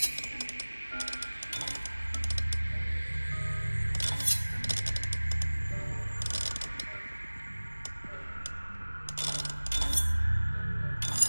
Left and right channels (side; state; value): both; inverted; correlation -1.00